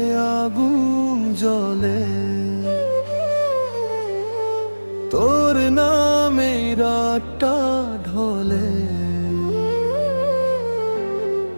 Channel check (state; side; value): inverted; both; correlation -1.00